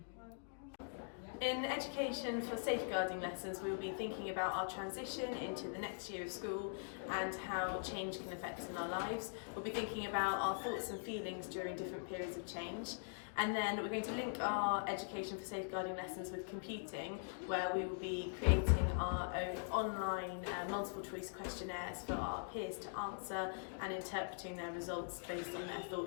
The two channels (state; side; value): silent; right; digital silence